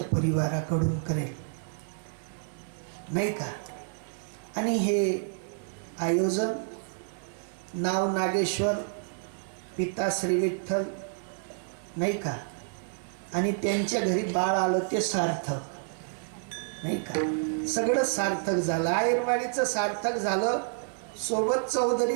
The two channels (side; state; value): left; silent; 58 dB below the other